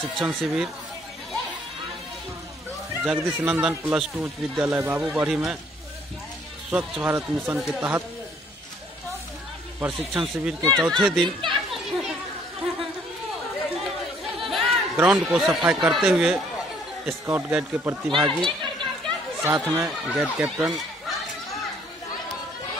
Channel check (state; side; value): normal; both; correlation 0.62